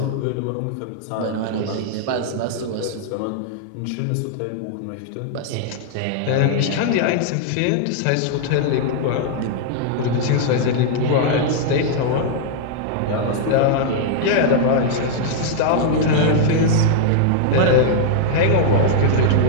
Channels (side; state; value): both; different; correlation -0.01